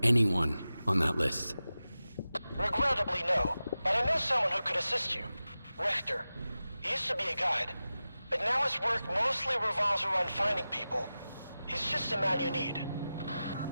anyone on that list? Regrettably, no. But I know someone who could assist you. Richter. He used to be a guide, but now his work mostly revolves around finding people. He's just the man you need.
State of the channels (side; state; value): both; inverted; correlation -0.94